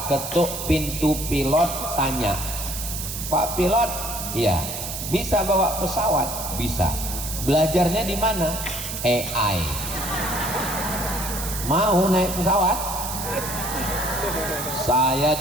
ketuk pintu pilot, tanya, Pak pilot, iya, bisa bawa pesawat? Bisa. Belajarnya di mana? AI. Mau naik pesawat? Saya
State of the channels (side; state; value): right; noise; hiss, 6 dB below the sound